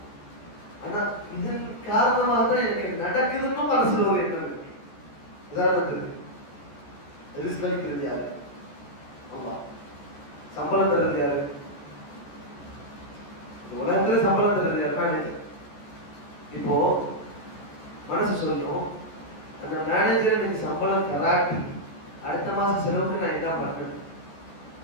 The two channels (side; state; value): right; late; 14 ms